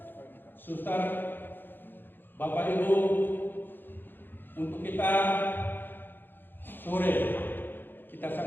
Suster, Bapak Ibu, untuk kita sore kita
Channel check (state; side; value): late; right; 0.096 ms